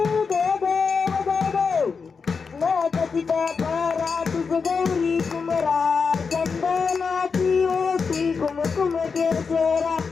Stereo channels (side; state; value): right; quieter; 5.3 dB